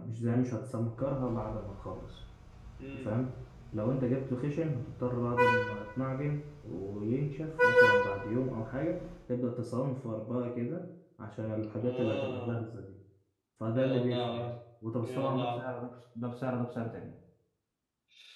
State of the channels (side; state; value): both; identical; correlation 1.00